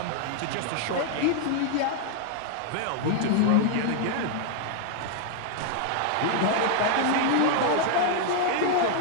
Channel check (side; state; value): both; different; correlation 0.00